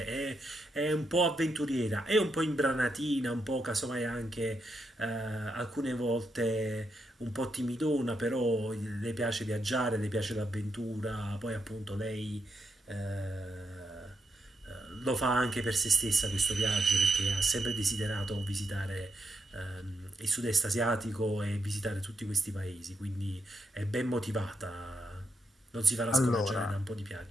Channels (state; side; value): normal; both; correlation 0.82